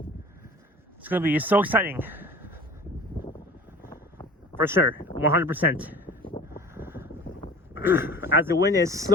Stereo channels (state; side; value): normal; both; correlation 0.42